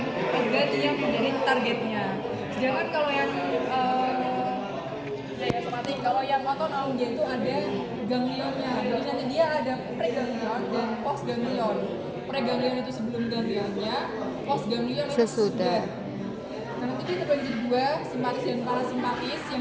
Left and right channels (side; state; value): both; identical; correlation 1.00